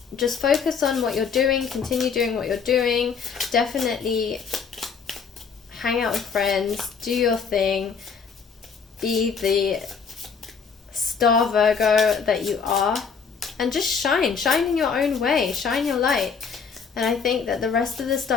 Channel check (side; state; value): right; quieter; 6.0 dB